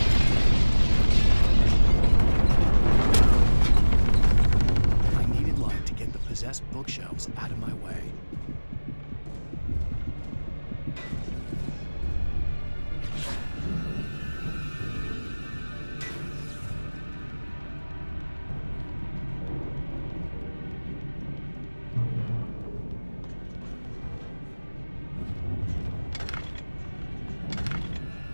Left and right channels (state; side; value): inverted; both; correlation -1.00